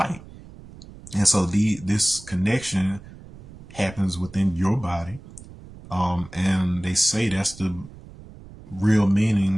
And so this connection happens within your body. And they say that's the real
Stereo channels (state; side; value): noise; right; rumble, 18 dB below the sound